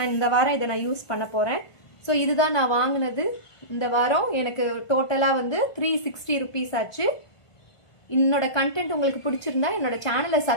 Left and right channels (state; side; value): late; right; 1.5 ms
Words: இந்த வாரம் இதை நான் யூஸ் பண்ண போறேன். ஸோ இதுதான் நான் வாங்கினது இந்த வாரம். எனக்கு டோட்டலா வந்து 360 ருபீஸ் ஆச்சு. என்னோட கண்டென்ட் உங்களுக்கு பிடிச்சிருந்தா என்னோட சேனலை